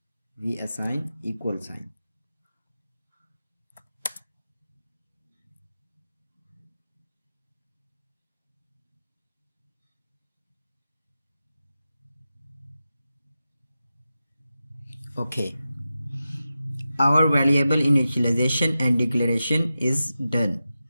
we assign equal sign. Okay, our variable initialization and declaration is done.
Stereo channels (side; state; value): both; inverted; correlation -0.92